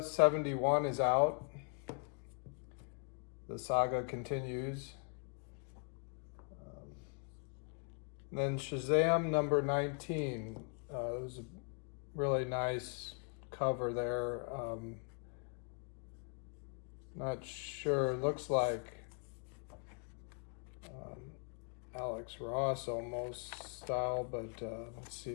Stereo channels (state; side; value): quieter; right; 38.9 dB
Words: is out. The saga continues. Then Shazam #19. There's a really nice cover there. Not sure. Looks like Alex Ross almost style, but let's see